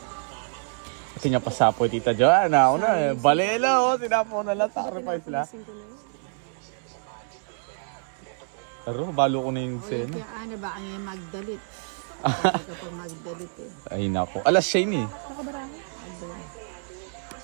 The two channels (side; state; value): left; silent; 60 dB below the other